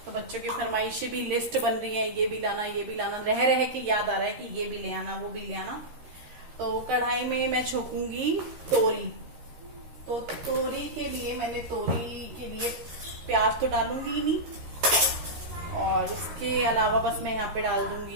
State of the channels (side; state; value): left; late; 13 ms